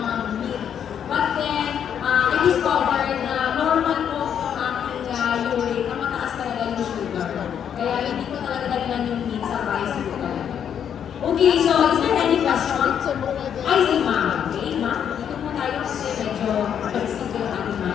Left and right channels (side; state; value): right; quieter; 8.6 dB